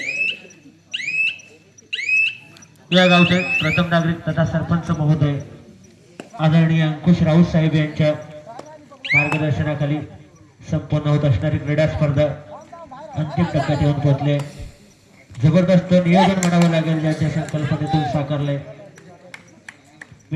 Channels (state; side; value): identical; both; correlation 1.00